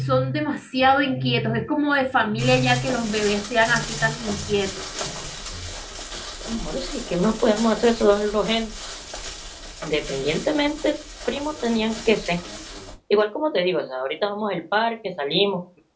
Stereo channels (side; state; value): both; identical; correlation 1.00